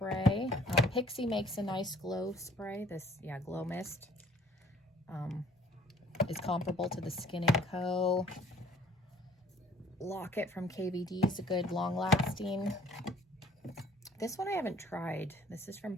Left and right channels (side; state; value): both; normal; correlation 0.56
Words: Pixie makes a nice glow spray. Glow Mist. Is comparable to the Skin & Co. Locket from KVD is a good long-lasting. This one I haven't tried. This is from